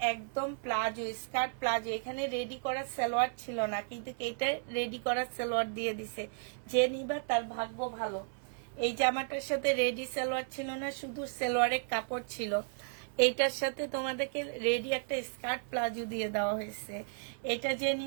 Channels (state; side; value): silent; left; 55 dB below the other